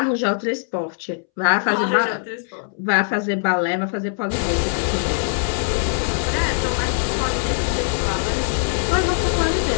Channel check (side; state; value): right; silent; 65 dB below the other